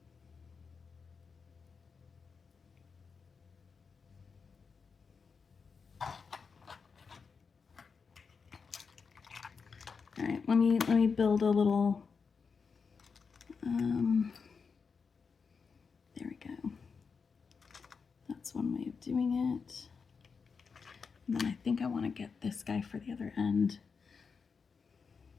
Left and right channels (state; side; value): quieter; right; 5.4 dB